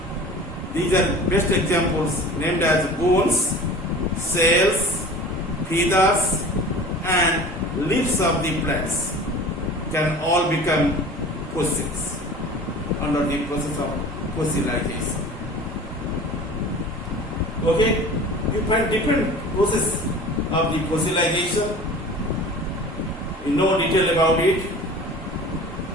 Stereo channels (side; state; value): both; normal; correlation 0.40